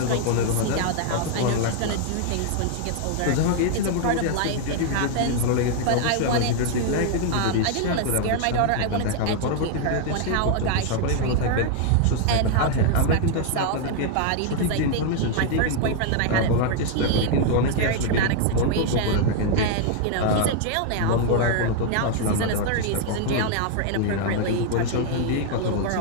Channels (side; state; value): both; different; correlation 0.00